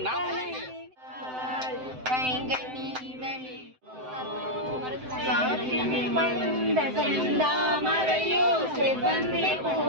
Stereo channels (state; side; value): late; left; 7.8 ms